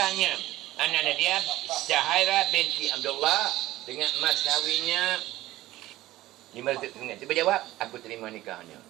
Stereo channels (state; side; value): quieter; left; 16.4 dB